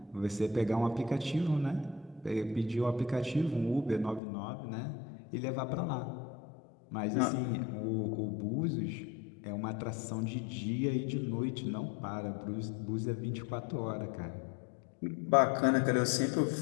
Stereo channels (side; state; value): right; drops out; at 4.2 s